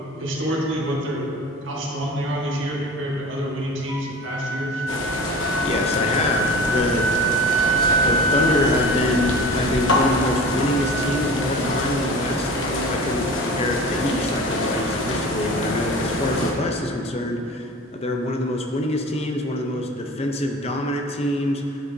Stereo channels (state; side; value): normal; both; correlation 0.38